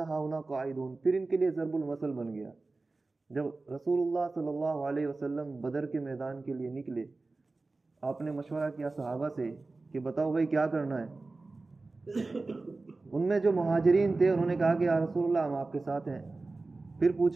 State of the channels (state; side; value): quieter; left; 3.5 dB